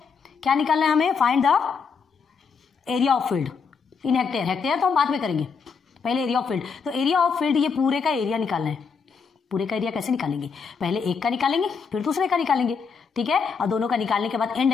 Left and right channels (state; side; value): quieter; right; 5.7 dB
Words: क्या निकालना है हमें? Find the area of field in hectare. Hectare तो हम बाद में करेंगे, पहले एरिया ऑफ फील्ड। तो एरिया ऑफ फील्ड, ये पूरे का एरिया निकालना है। पूरे का एरिया कैसे निकालेंगे, पहले एक का निकालेंगे फिर दूसरे का निकालेंगे, ठीक है। और दोनों का निकालने के बाद एंड